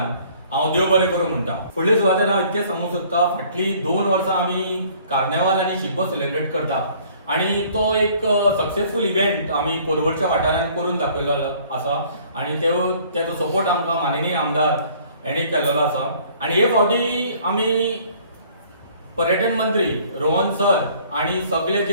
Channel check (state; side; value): inverted; both; correlation -0.56